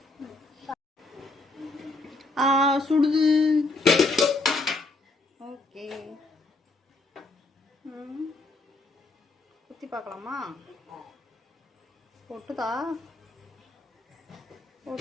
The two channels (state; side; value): quieter; right; 3.1 dB